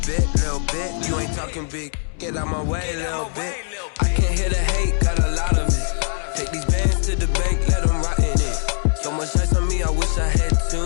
bit, you ain't talking big. Get out my way, little bit. I can't hear the hate, got a lot of it. Take these bands to the bank, let them rot in it. So much ice on me, I wish I had 2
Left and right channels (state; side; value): silent; right; digital silence